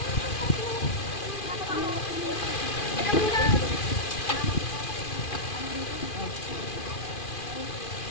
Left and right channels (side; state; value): right; late; 2.4 ms